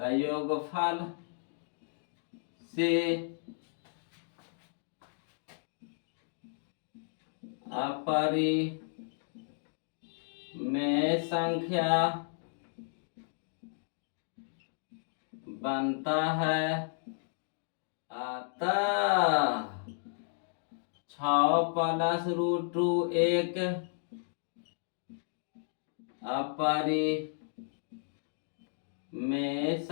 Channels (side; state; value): right; silent; digital silence